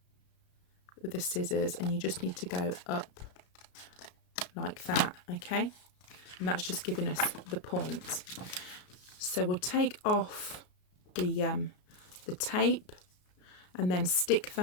with the scissors, and you just need to go up like that, okay? And that's just giving us the point. So we'll take off the tape and then stick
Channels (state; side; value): late; right; 33 ms